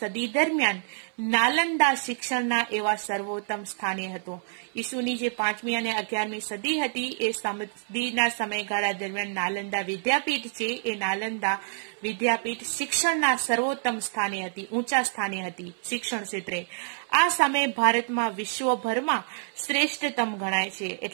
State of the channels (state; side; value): silent; left; 60 dB below the other